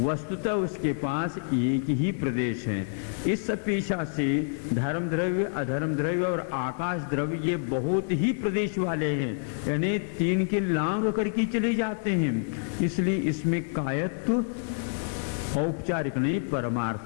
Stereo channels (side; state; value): right; silent; 60 dB below the other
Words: उसके पास एक ही प्रदेश है। इस अपेक्षा से धर्म द्रव्य अधर्म द्रव्य और आकाश द्रव्य ये बहुत ही प्रदेश वाले हैं, यानी 3 के लांग करके चले जाते हैं। इसलिए इसमें कायत्व औपचारिक नहीं